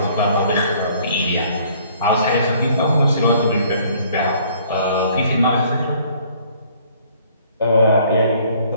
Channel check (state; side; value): inverted; both; correlation -0.59